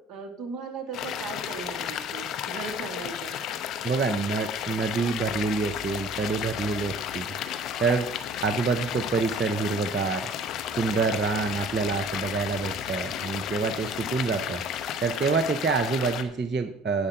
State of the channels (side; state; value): both; normal; correlation 0.50